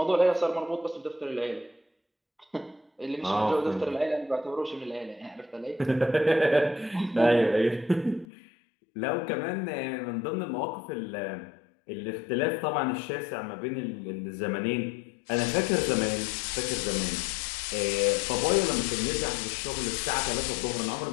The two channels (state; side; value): drops out; right; at 8.2 s